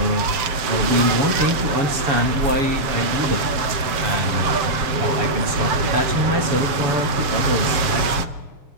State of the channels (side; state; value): left; late; 7.0 ms